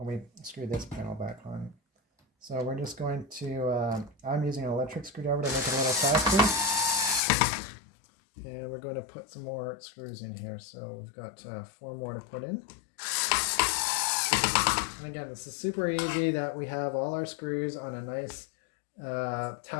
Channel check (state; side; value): drops out; right; at 7.2 s